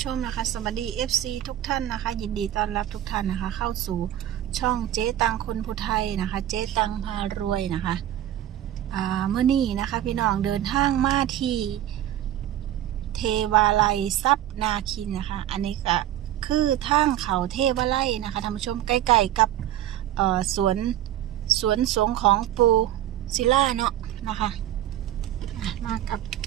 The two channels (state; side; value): quieter; left; 12.3 dB